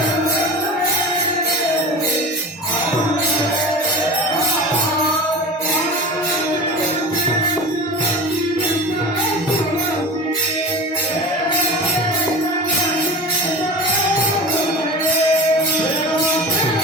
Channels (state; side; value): normal; both; correlation 0.32